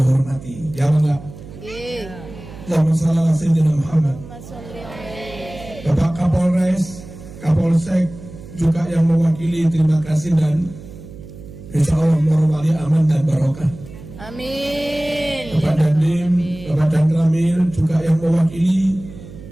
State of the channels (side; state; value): right; noise; hum, 16 dB below the sound